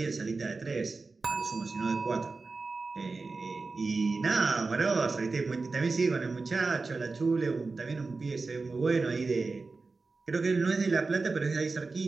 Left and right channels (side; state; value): left; quieter; 3.9 dB